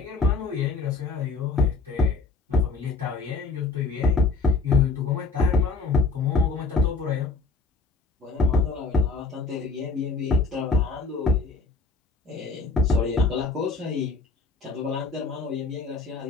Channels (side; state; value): right; quieter; 3.7 dB